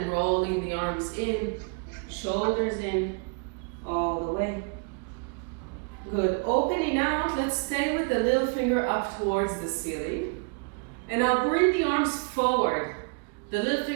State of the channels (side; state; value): left; quieter; 34.6 dB